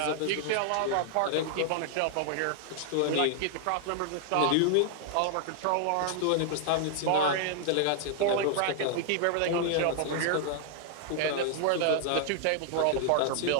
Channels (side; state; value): both; different; correlation 0.00